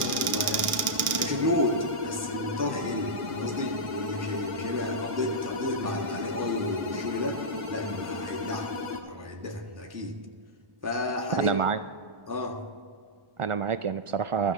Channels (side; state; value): left; late; 1.6 ms